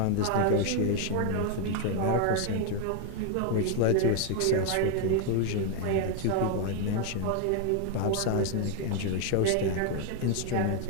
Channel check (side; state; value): both; different; correlation 0.00